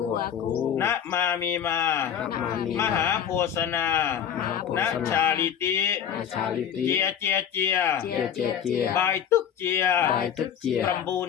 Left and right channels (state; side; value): quieter; right; 8.7 dB